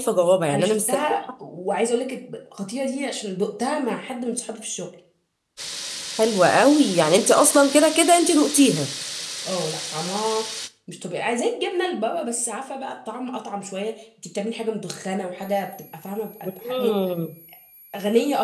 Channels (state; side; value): identical; both; correlation 1.00